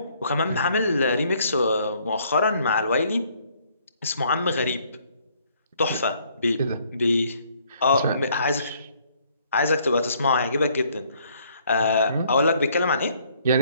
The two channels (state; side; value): inverted; both; correlation -0.65